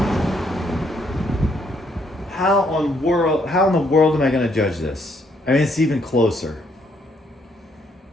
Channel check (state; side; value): normal; both; correlation 0.71